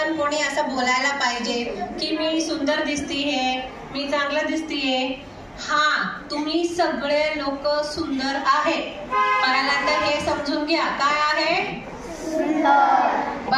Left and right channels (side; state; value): both; identical; correlation 1.00